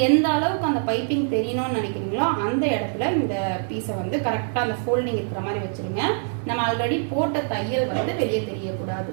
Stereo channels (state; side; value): silent; left; digital silence